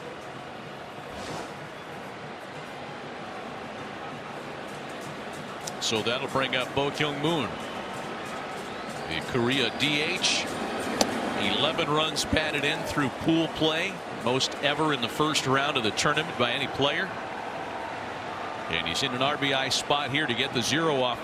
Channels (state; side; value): identical; both; correlation 1.00